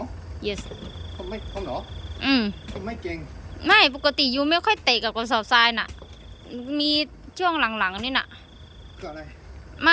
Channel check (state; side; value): identical; both; correlation 1.00